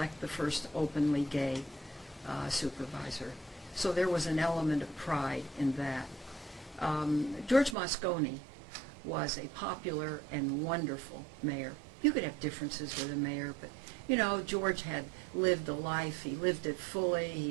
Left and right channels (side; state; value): left; drops out; at 7.8 s